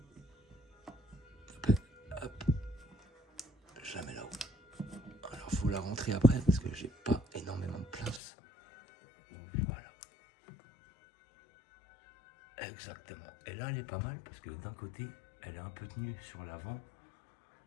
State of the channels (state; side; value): drops out; right; at 8.2 s